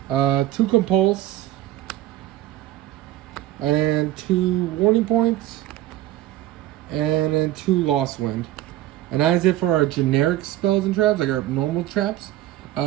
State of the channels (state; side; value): quieter; left; 14.5 dB